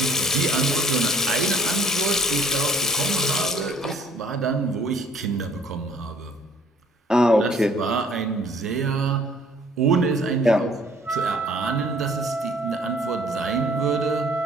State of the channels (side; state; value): both; normal; correlation 0.57